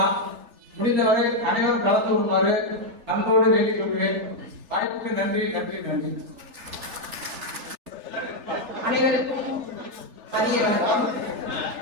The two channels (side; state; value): left; late; 3.3 ms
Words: முடிந்தவரை அனைவரும் கலந்து கொள்ளுமாறு அன்போடு வேண்டிக் கொள்கிறேன். வாய்ப்புக்கு நன்றி, நன்றி, நன்றி. அனைவருக்கும் மதிய வணக்கம்.